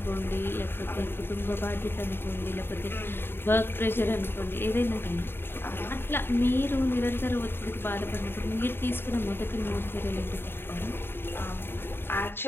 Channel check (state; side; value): late; right; 0.11 ms